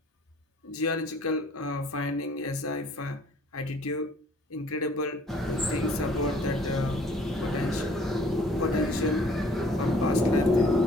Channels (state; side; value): normal; both; correlation 0.56